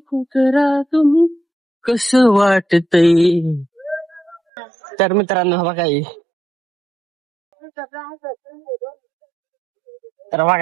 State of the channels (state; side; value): drops out; left; at 4.4 s